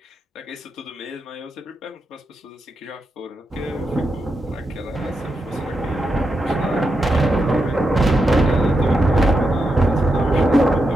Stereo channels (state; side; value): normal; both; correlation 0.85